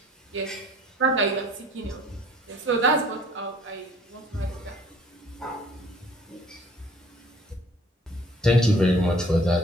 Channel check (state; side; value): normal; both; correlation 0.54